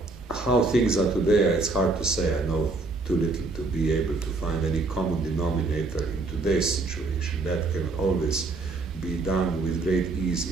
how things are today, it's hard to say. I know too little to be able to find any common denominator in today's situation. That can always be done with great ease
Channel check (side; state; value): left; quieter; 3.5 dB